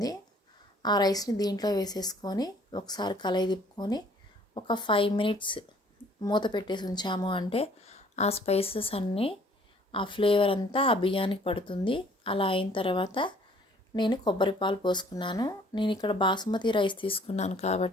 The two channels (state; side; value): normal; both; correlation 0.58